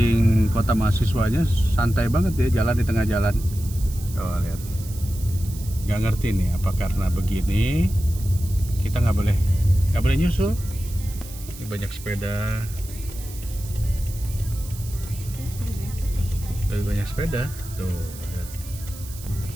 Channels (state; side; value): noise; right; hiss, 16 dB below the sound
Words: kota mahasiswanya santai banget ya, jalan di tengah jalan. Oh, lihat. Nggak ngerti nih apa karena begini kita nggak boleh nyusul. Ini banyak sepeda. Lebih banyak sepeda. Tuh, lihat.